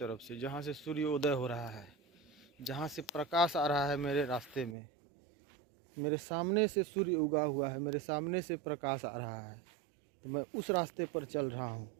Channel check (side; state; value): left; drops out; at 4.8 s